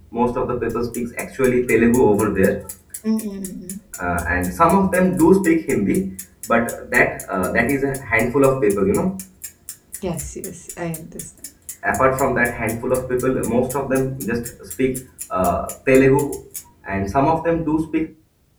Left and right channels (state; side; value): identical; both; correlation 1.00